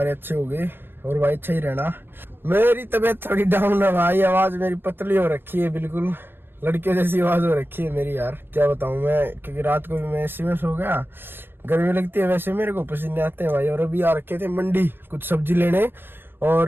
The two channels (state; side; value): late; left; 0.10 ms